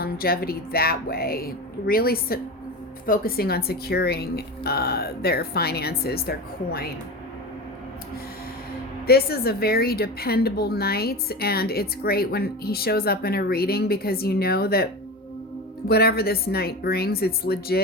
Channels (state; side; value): normal; both; correlation 0.26